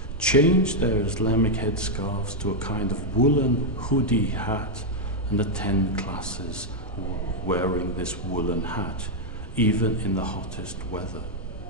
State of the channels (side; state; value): both; normal; correlation 0.00